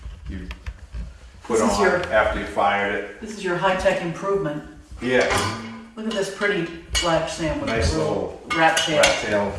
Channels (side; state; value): both; identical; correlation 1.00